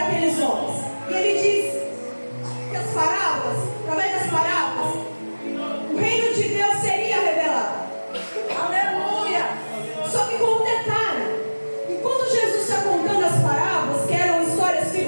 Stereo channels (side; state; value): both; inverted; correlation -1.00